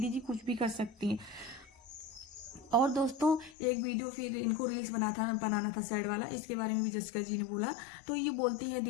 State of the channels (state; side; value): drops out; right; at 3.6 s